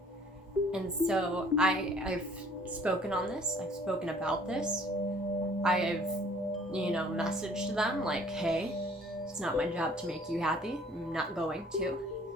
And so I've spoken on this. I've spoken about this. I've, messaged them like, hey, it's not my job to make you happy. I'm not going to.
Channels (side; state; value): both; normal; correlation 0.55